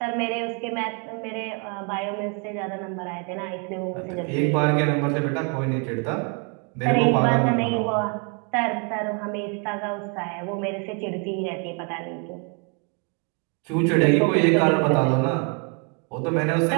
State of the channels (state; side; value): quieter; left; 36.8 dB